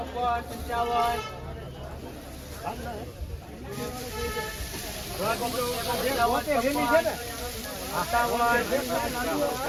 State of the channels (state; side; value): identical; both; correlation 1.00